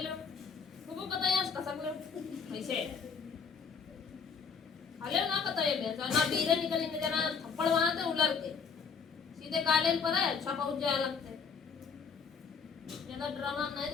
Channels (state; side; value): quieter; right; 5.9 dB